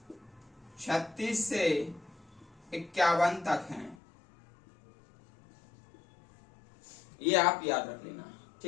36 से 51 तक हैं। ये आप याद रख लेना,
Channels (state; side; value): drops out; right; at 4.0 s